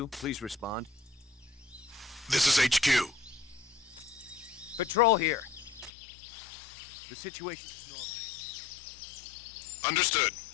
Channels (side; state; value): right; drops out; at 5.9 s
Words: Please respond. This is HQ. Patrol here. The situation is normal. Understood.